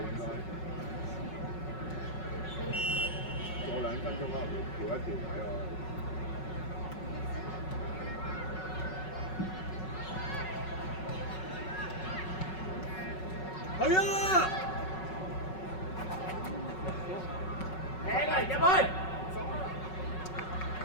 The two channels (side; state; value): right; late; 5.4 ms